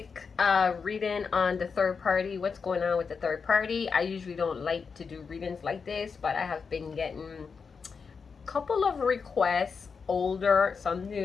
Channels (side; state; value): right; quieter; 5.5 dB